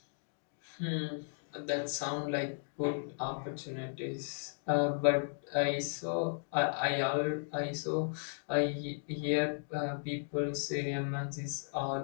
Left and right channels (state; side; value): silent; right; digital silence